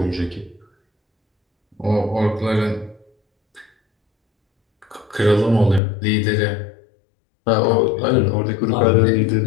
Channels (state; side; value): drops out; right; at 5.8 s